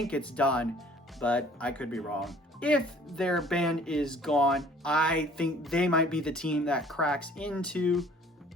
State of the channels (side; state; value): both; normal; correlation 0.54